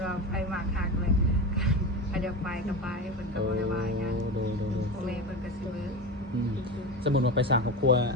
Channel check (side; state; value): both; normal; correlation 0.24